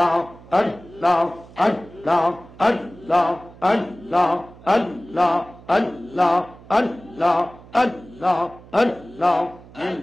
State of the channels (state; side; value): noise; right; hum, 21 dB below the sound